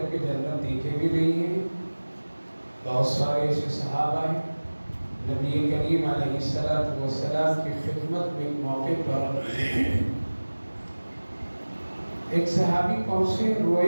جنت دیکھے بھی نہیں ہیں۔ بہت سارے ایسے صحابہ ہیں، نبی کریم علیہ السلام کی خدمت میں ایک موقع پر ایک صحابی پہنچے،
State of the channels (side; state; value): both; inverted; correlation -1.00